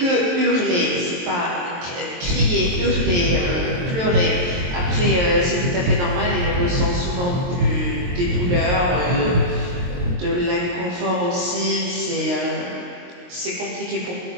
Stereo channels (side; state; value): left; late; 23 ms